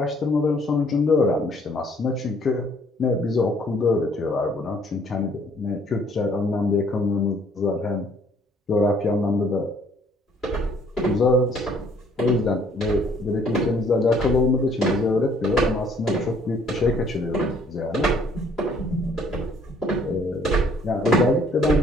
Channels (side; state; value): both; normal; correlation 0.61